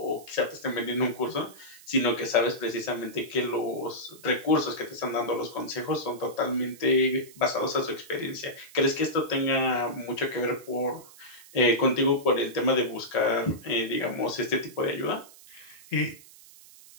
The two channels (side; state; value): right; noise; hiss, 21 dB below the sound